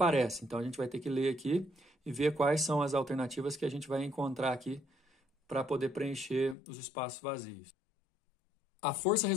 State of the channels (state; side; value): drops out; right; at 6.6 s